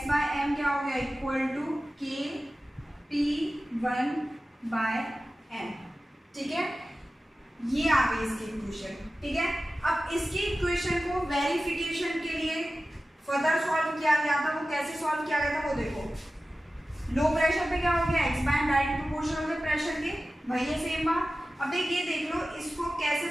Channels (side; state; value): both; normal; correlation 0.95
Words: क्या हो गया, इक्वल टू k p1/n, ठीक है। ये आ गई इसकी इक्वेशन, ठीक है। अब इसकी इक्वेशन को वेरिफिकेशन के लिए फर्दर सॉल्व किया गया था, वो कैसे सॉल्व किया गया था वो देखो। लो प्रेशर पे क्या हो गया, x/m डायरेक्ट प्रोपोर्शनल हो गया प्रेशर के, वही है सेम बात। अब देखिए देख लो इसको कैसे